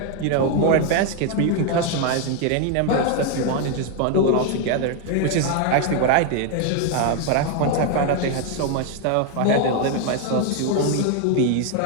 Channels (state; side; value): different; both; correlation 0.01